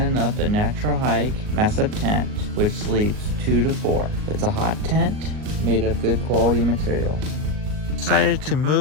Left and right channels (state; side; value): late; left; 38 ms